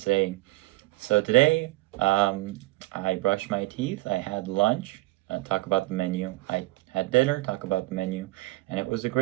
so today, I brushed my teeth, I had lunch, talk about the menu, I had dinner, talk about the menu, and it was a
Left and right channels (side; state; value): left; quieter; 20.2 dB